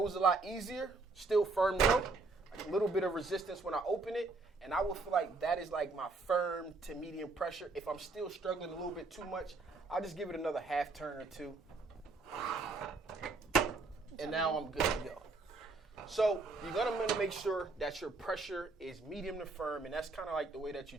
a lot easier, still firm though, like a little bit of resistance when I open it, and I will feel like that is like my firm to medium pressure. If I'm still struggling a little bit too much, I'll just give it another half turn or 2. And now I'm good to go. So you're gonna make sure that your pressure is medium to firm, and that's kind of like the way that you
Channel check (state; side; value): quieter; left; 3.6 dB